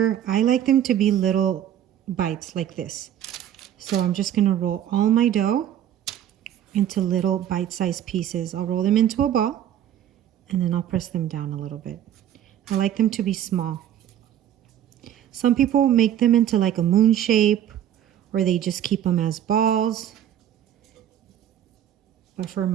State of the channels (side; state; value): left; quieter; 10.7 dB